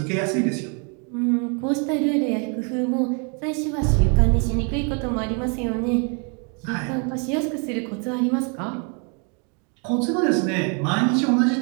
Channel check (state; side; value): quieter; left; 37.1 dB